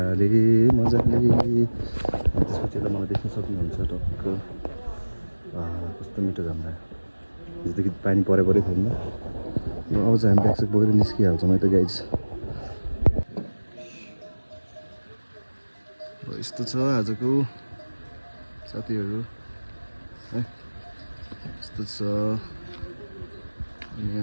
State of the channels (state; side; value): inverted; both; correlation -1.00